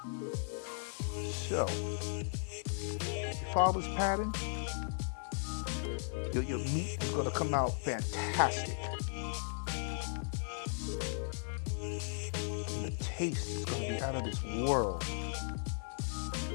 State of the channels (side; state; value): right; silent; digital silence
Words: So, you follow this pattern, your meat is going to come out fantastic. And the taste is going to be out of this world.